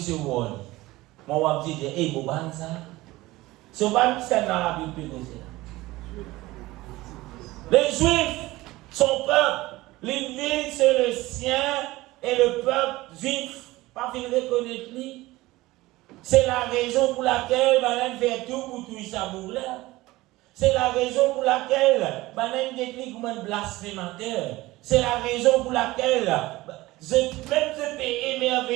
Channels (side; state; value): left; quieter; 18.9 dB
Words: Moi, on va dire, hey, Boban, ça. Soban, c'est dans la Bible. Les Juifs, son peuple, les villes, c'est le sien et le peuple juif. Pas finir reconnaître lui. C'est la raison pour laquelle Madame fait tout pour tout ça pour là. C'est la raison pour laquelle, une technique comme un blasphémateur. C'est la raison pour laquelle, je peux